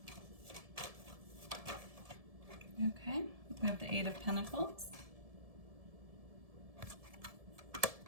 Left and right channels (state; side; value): late; left; 1.7 ms